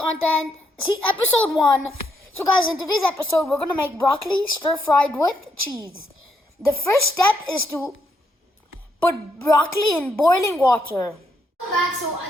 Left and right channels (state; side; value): normal; both; correlation 0.77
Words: see episode 1. So guys, in today's episode, we're gonna make broccoli stir-fried with cheese. The first step is to put broccoli in boiling water. Back, so